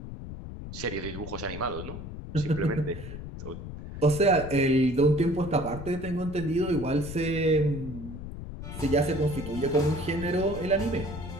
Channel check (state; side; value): noise; left; rumble, 10 dB below the sound